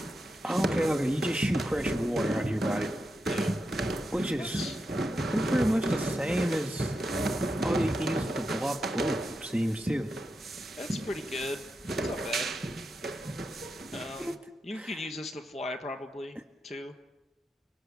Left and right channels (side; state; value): both; normal; correlation 0.87